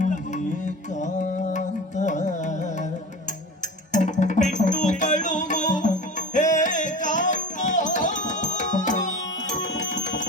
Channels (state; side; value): normal; both; correlation 0.34